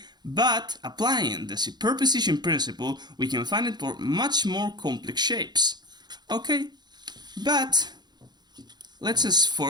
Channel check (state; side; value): late; left; 0.20 ms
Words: But applying the superposition principle, we can find it for much more complex shapes, okay? But let's just